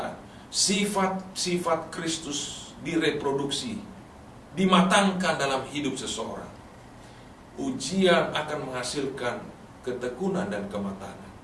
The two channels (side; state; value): both; identical; correlation 1.00